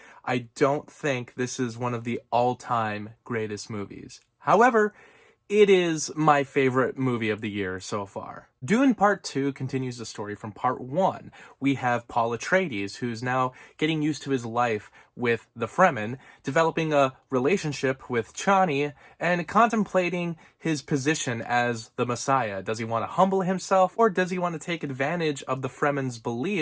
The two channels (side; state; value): both; identical; correlation 1.00